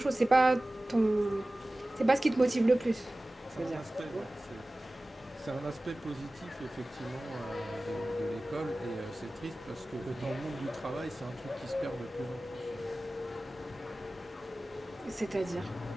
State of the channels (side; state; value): both; normal; correlation 0.97